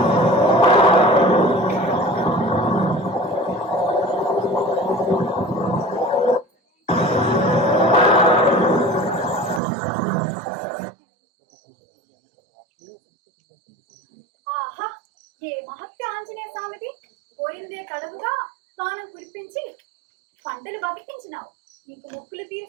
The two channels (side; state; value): left; drops out; at 9.6 s